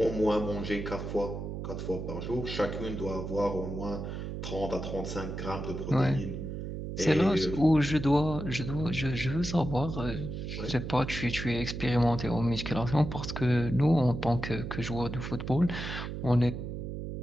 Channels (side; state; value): right; noise; hum, 6 dB below the sound